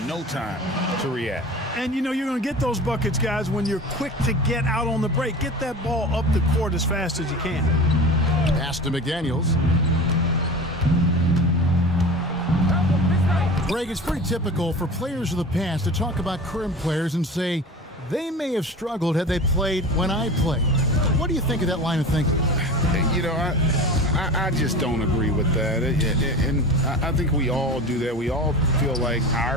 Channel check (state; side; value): normal; both; correlation 0.34